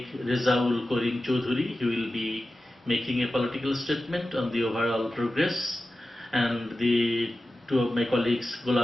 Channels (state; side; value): normal; both; correlation 0.94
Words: Rezaul Karim Choudhury, he will be making a political statement on the overall progress, and the two of my colleagues,